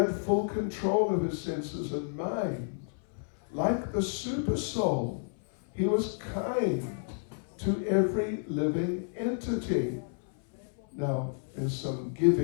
full control of his senses and mind. Like the super soul, he was kind to every living entity. Now, there's some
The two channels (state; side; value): silent; right; 57 dB below the other